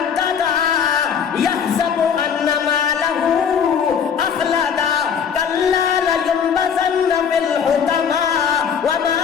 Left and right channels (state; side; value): quieter; right; 7.3 dB